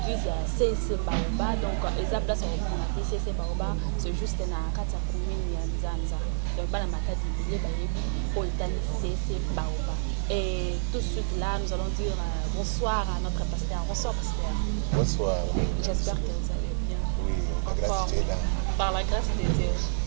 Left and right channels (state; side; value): silent; left; 59 dB below the other